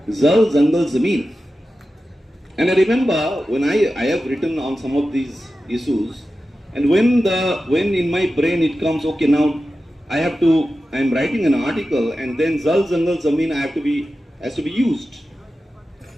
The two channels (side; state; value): both; normal; correlation 0.93